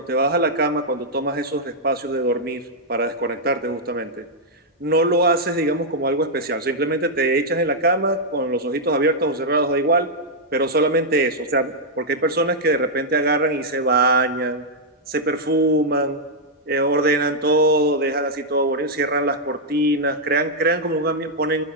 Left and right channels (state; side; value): normal; both; correlation -0.05